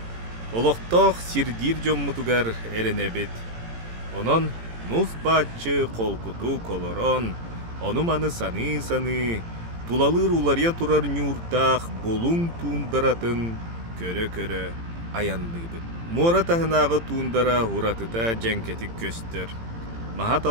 Олықтақ сирдир жоммутугар эренебет. Онон нус бачы қолкуту колорон, онуманы саны, тулалыр улария турар нюртақ болун туундаратын көрө-көрө аяндыбыт. Мора тахынағы туындара уратыта жәнкетік көстер. Махат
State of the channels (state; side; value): late; left; 18 ms